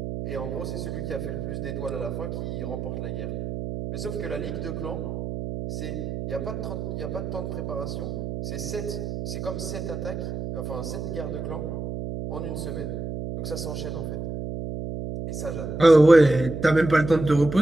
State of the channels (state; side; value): noise; right; hum, 5 dB below the sound